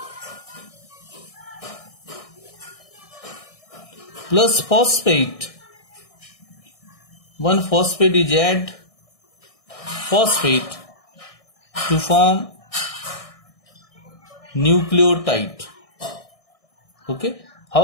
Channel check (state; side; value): late; right; 1.6 ms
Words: plus phosphate. One phosphate is add phosphate to form nucleotide. Okay,